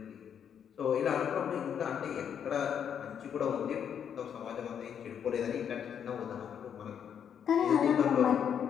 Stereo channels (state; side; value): quieter; right; 8.3 dB